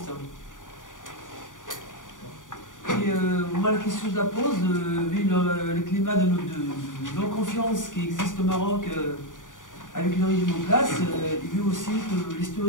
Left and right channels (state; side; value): late; right; 0.88 ms